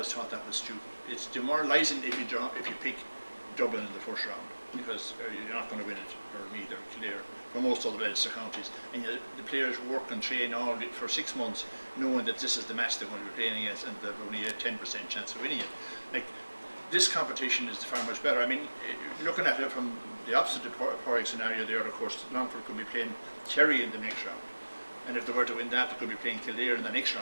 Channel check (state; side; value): inverted; both; correlation -1.00